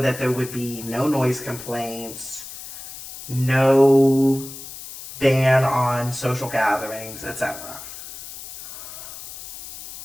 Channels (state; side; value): noise; left; hiss, 13 dB below the sound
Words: that there would be no noise complaints, no ban on social gatherings, etc.